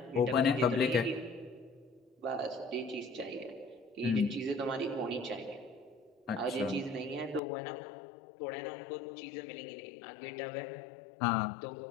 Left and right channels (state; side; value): drops out; right; at 7.4 s